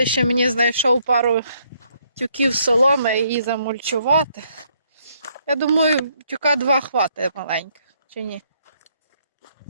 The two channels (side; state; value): both; inverted; correlation -0.70